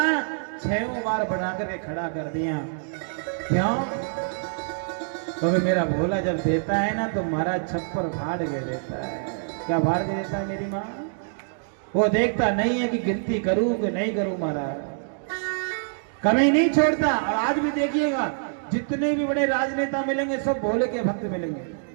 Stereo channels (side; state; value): left; silent; digital silence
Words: 6 बार बना करके खड़ा कर दिया। क्यों? क्योंकि मेरा भोला जब देता है ना तो महाराज छप्पर फाड़ के देता है। क्या फाड़ के देता है मेरी माँ? वो देखता नहीं है कि गिनती करूं कि नहीं करूं। महाराज कमी नहीं छोड़ता। और आज भी देखिएगा जितने भी बड़े राजनेता मिलेंगे सब भोले के भक्त मिलेंगे।